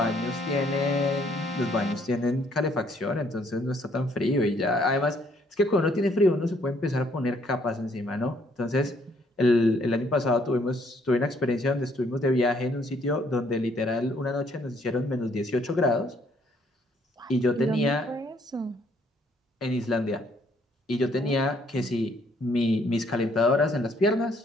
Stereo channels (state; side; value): normal; both; correlation 0.66